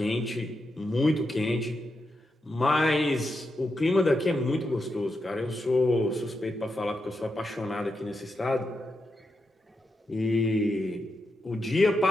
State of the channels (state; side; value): normal; both; correlation 0.86